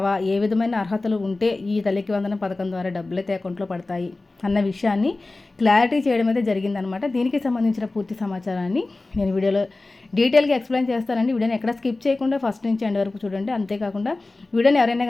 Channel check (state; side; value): quieter; right; 3.2 dB